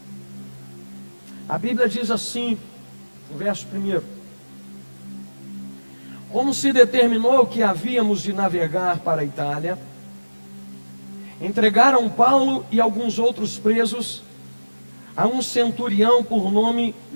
A Bíblia diz assim, no verso 1: como se determinou que havíamos de navegar para a Itália, entregaram Paulo e alguns outros presos a um centurião por nome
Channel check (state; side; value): inverted; both; correlation -1.00